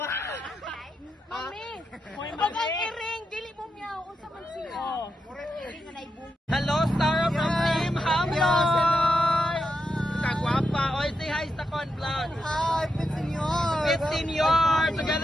Mami! Pag ang iring, dili mo miyaw. Unsa man siya? Hello, Star from Team Hamloy! Kagwapa. Oy, say hi sa Con Vlog. Hi, 15 years. 15 years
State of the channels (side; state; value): both; normal; correlation 0.85